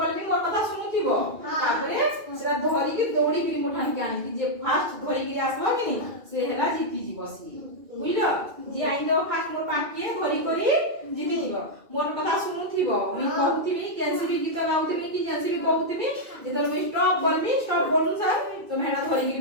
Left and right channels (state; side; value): late; left; 2.4 ms